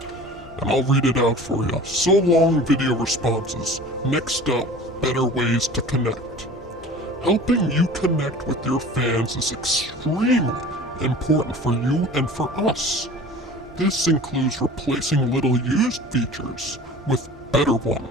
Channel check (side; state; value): both; normal; correlation 0.41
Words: And I'll read it out for you. So long, video responses. Next up, better ways to connect. Helping you connect with your fans is extremely important for you and for us. This includes replacing little used features with better